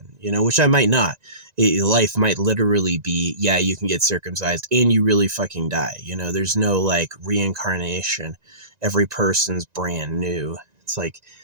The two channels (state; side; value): late; left; 1.9 ms